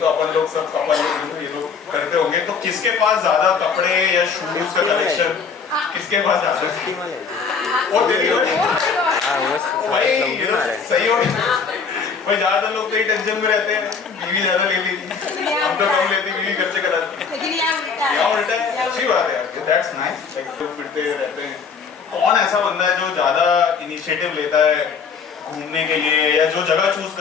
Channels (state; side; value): quieter; right; 5.7 dB